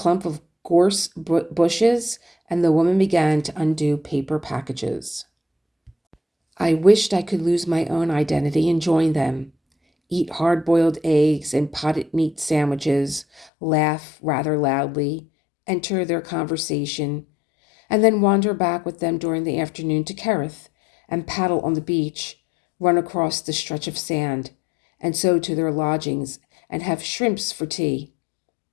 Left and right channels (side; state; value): right; drops out; at 13.5 s